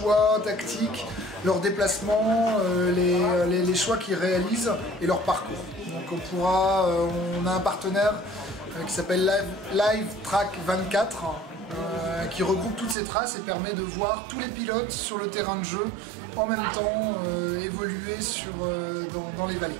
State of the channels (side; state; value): left; drops out; at 13.0 s